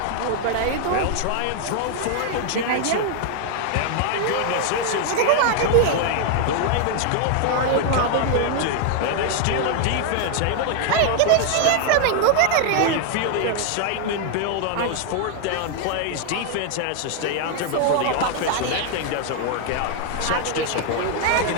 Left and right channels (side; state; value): both; different; correlation 0.00